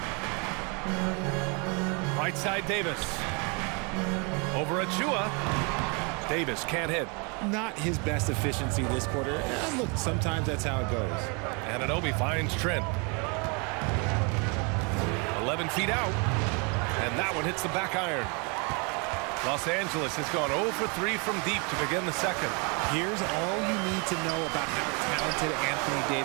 Right side Davis. Over Achua. Davis can't hit. Not his best efficiency this quarter. Look, sometimes that's how it goes. Anunoby finds Trent. 11 feet out. And that one hits the back iron. Los Angeles has gone 0 for 3 from deep to begin the second. Here's all you need to know about how talented Anthony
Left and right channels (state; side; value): quieter; left; 32.9 dB